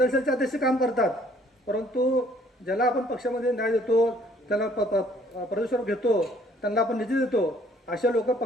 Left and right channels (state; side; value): normal; both; correlation 0.60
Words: सेलचे अध्यक्ष काम करतात, परंतु ज्याला आपण पक्षामध्ये न्याय देतो, त्याला प्रदेशवर घेतो, त्यांना आपण निधी देतो, अशा लोक